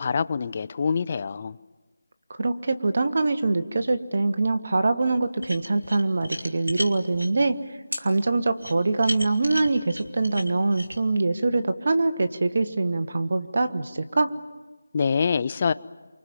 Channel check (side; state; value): both; inverted; correlation -0.93